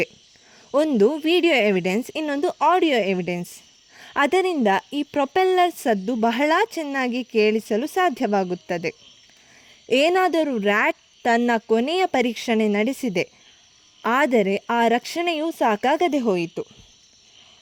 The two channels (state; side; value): identical; both; correlation 1.00